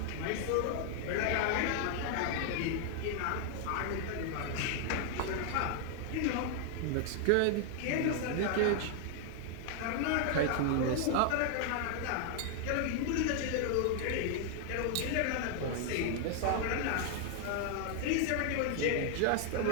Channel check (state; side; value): different; both; correlation 0.00